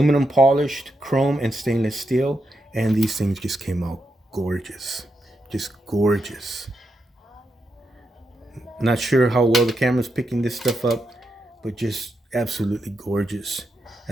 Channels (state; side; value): normal; both; correlation 0.84